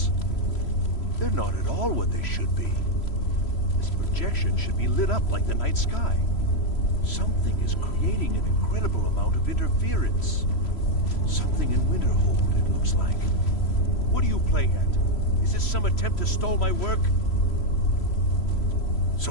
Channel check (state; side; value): late; right; 3.1 ms